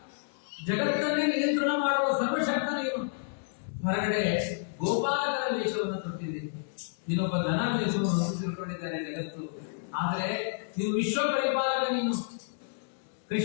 ಜಗತ್ತನ್ನೇ ನಿಯಂತ್ರಣ ಮಾಡುವ ಸರ್ವಶಕ್ತ ನೀನು. ಹೊರಗಡೆ ಗೋಪಾಲಕರ ವೇಷವನ್ನು ತೊಟ್ಟಿದ್ದೀರಿ, ನೀನೊಬ್ಬ ದನ ವೇಷವನ್ನು ತಿಳ್ಕೊಂಡಿದ್ದಾರೆ ಜಗತ್ತು. ಆದರೆ ನೀನು ವಿಶ್ವ ಪರಿಪಾಲಕ. ನೀನು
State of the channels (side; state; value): right; silent; digital silence